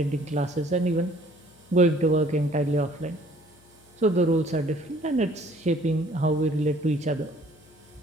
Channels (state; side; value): noise; left; hum, 28 dB below the sound